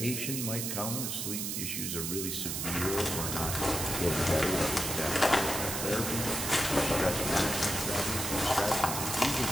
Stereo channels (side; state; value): right; noise; hiss, 2 dB below the sound